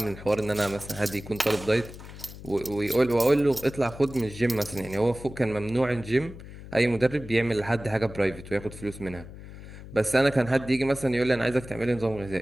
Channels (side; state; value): left; noise; hum, 15 dB below the sound